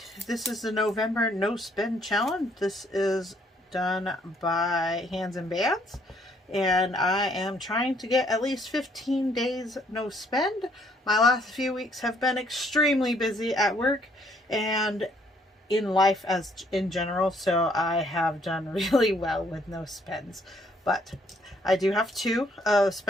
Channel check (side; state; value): both; normal; correlation 0.66